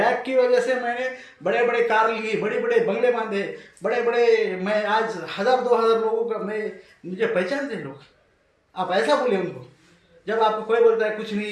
की वजह से मैंने बड़े बड़े कार लिए, बड़े बड़े बंगले बांधे, बड़े बड़े, मैं आज 1000-2000 लोगों का मुझे पहचानते हैं लोग। आप ऐसा बोले उनको। जब आपको कोई बोलता है कुछ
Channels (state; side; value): identical; both; correlation 1.00